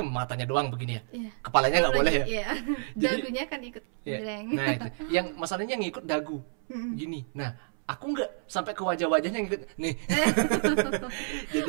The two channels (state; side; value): silent; left; 58 dB below the other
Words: matanya doang begini ya. Iya. Kepalanya nggak boleh ya. Iya. Jadi- Dagunya kan ikut Iya. geleng. Nah itu, yang masalahnya yang ngikut dagu, gini. Nah, aku nggak sampai ke wajah-wajahnya ngikut. Nih.